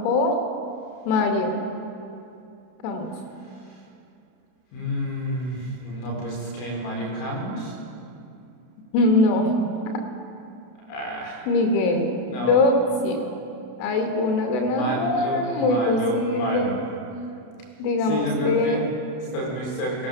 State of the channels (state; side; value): late; right; 32 ms